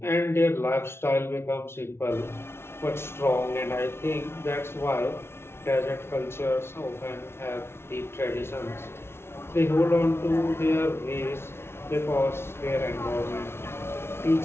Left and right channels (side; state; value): right; late; 0.12 ms